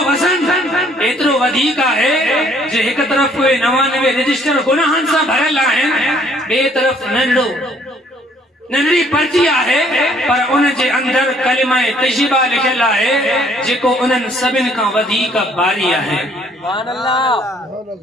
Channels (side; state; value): both; normal; correlation 0.62